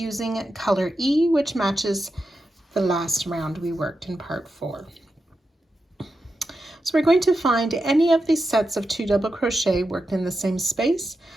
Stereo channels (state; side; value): normal; both; correlation 0.89